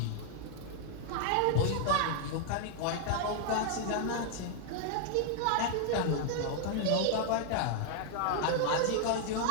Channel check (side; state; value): both; different; correlation 0.00